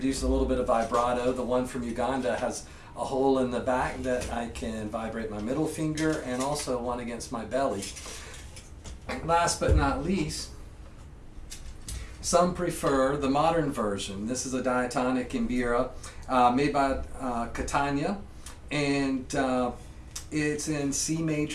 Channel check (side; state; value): both; identical; correlation 1.00